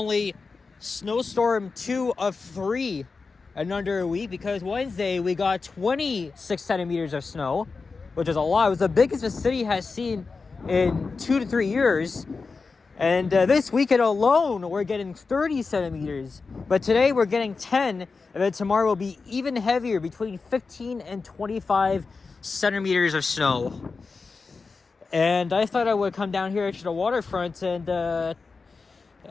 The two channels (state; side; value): quieter; right; 4.4 dB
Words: snowstorm 2 of 3 in under a week, because Wednesday we got 26 centimeters of snow, which is a lot. It was the biggest the city has seen in 2 to 3 years. And this weekend alone, we're getting 30 centimeters. But today we're getting 10. And then tomorrow will be even heavier, between 15 and 25 centimeters of snow. And I thought I would come down here to the Waterfront and